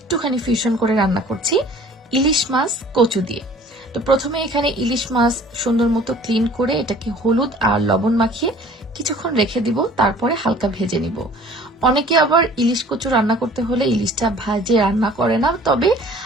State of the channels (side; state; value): both; normal; correlation 0.50